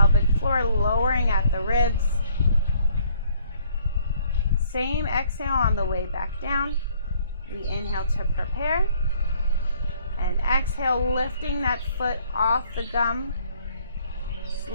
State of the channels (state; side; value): inverted; both; correlation -0.62